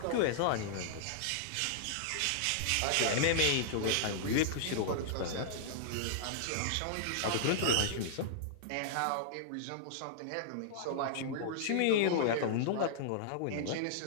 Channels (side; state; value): both; different; correlation -0.02